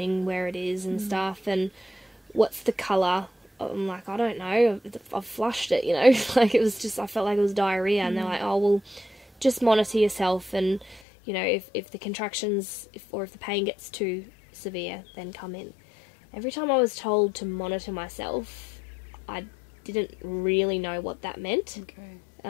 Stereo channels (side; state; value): right; drops out; at 11.0 s